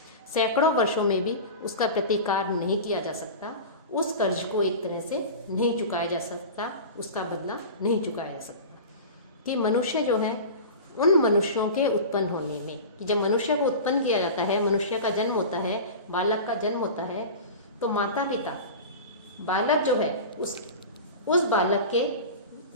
सैकड़ों वर्षों में भी उसका प्रतिकार नहीं किया जा सकता, उस कर्ज को एक तरह से नहीं चुकाया जा सकता, उसका बदला नहीं चुकाया जा सकता। कि मनुष्य जो है उन मनुष्यों के उत्पन्न होने में, कि जब मनुष्य को उत्पन्न किया जाता है, मनुष्य का जन्म होता है, बालक का जन्म होता है, तो माता पिता बालक जो है उस बालक के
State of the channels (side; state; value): both; inverted; correlation -0.31